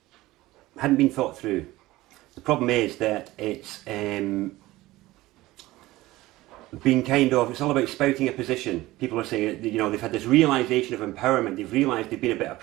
been thought through. The problem is that it's been it's all about spouting a position. People are saying, you know, they've had this realisation of empowerment, they've realised they've been a bit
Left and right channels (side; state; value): left; quieter; 18.0 dB